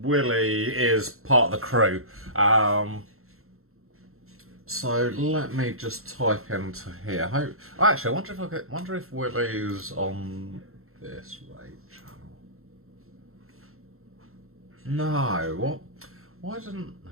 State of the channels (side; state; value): left; late; 0.62 ms